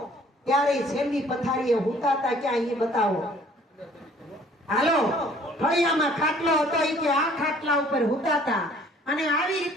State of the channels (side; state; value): both; normal; correlation 0.56